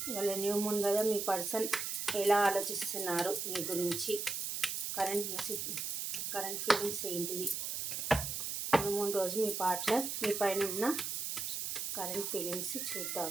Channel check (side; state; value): right; noise; hiss, 3 dB below the sound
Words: వాళ్ళ న్యూ మూన్ కదా, మీ పర్సన్ ఎలా ఆలోచిస్తున్నారు మీ గురించి, కరెంట్ ఫీలింగ్స్ ఏంటిది, న్యూ మూన్ రోజు మీ పార్ట్నర్ మీ పైన ఉన్న కరెంట్ ఫీలింగ్స్